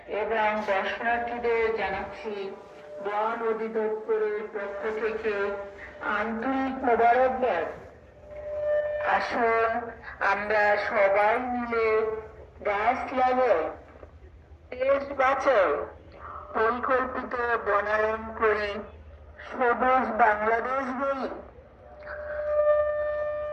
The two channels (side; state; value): both; identical; correlation 1.00